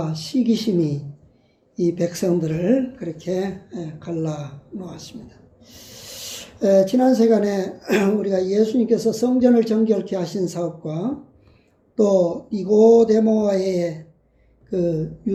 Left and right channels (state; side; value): identical; both; correlation 1.00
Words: 시기심이 이 백성들을 그렇게 갈라 놓았습니다. 지난 시간에 우리가 예수님께서 성전을 정결케 하신 사업과 또 니고데모와의 그